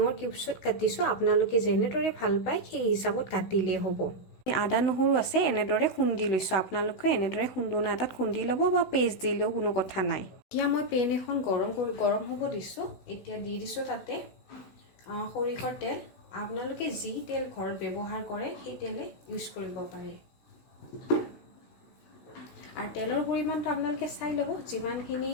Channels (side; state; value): right; late; 16 ms